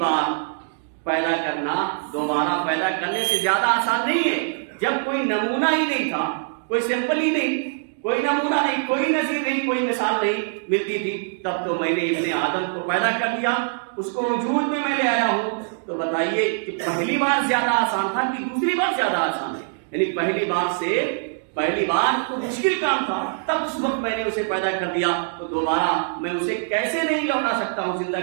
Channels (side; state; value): left; silent; digital silence